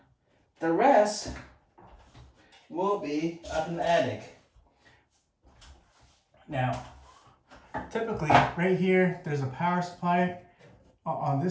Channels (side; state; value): both; identical; correlation 1.00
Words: the rest will be up in the attic. Now, typically right here, there's a power supply on